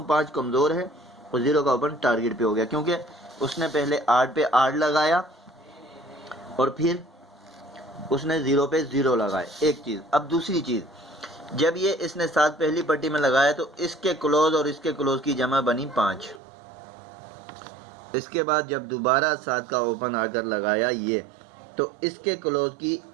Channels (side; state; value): left; drops out; at 16.4 s